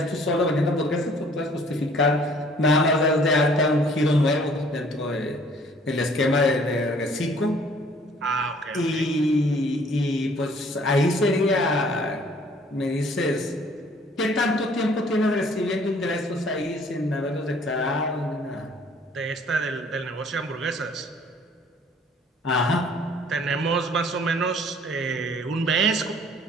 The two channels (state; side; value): normal; both; correlation 0.57